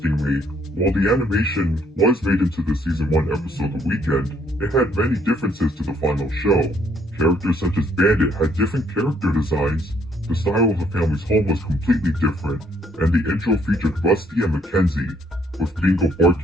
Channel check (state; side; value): normal; both; correlation 0.67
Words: while the animation was made into the Season 1 episode The Weekend, it had many differences to the final show. Characters such as Bandit had different character designs, the style of the family's home was completely different, and the intro featured Rusty and Mackenzie, with Bingo